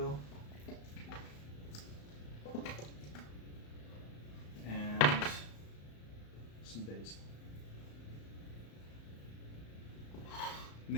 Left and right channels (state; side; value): late; right; 35 ms